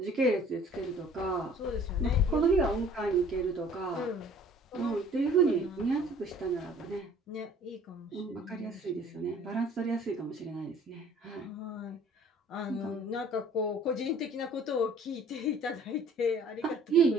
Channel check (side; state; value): both; normal; correlation 0.53